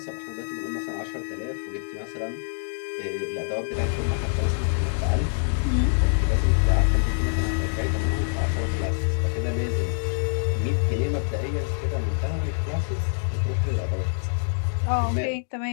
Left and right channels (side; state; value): right; silent; digital silence